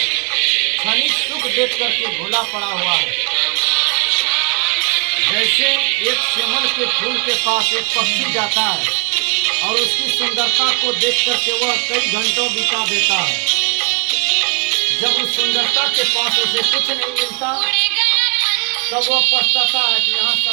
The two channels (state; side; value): quieter; left; 35.7 dB